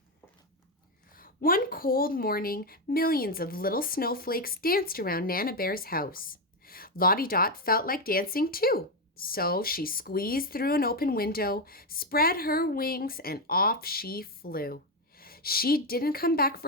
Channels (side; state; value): both; normal; correlation 0.08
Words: One cold morning, millions of little snowflakes danced around Nana Bear's house. Lottie Dot felt like dancing too, so she squeezed through an open window, spread her wings, and off she flew. She didn't come back